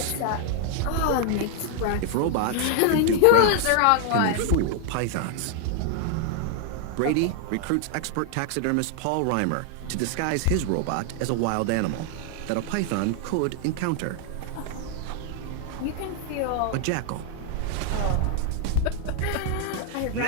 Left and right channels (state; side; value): different; both; correlation 0.00